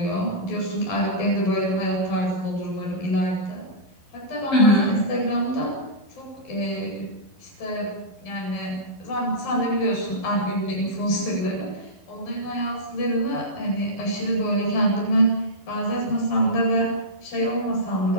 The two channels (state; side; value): late; right; 11 ms